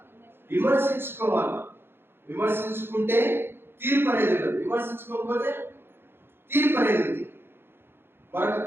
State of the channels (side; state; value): left; late; 0.11 ms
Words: విమర్శించుకోవాలి. విమర్శించుకుంటే తీర్పు అనేది ఉండదు, విమర్శించుకోకపోతే తీర్పు అనేది ఉంది. మనకు